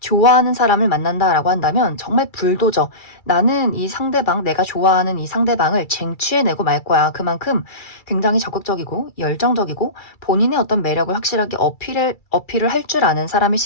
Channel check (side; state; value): right; late; 2.3 ms